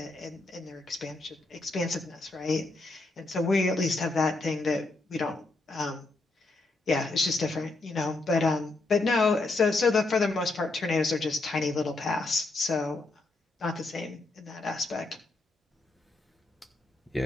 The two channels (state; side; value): quieter; right; 3.2 dB